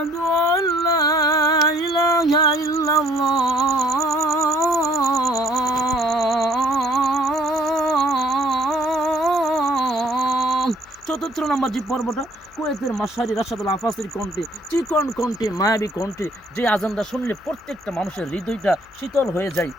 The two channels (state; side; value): noise; left; hum, 29 dB below the sound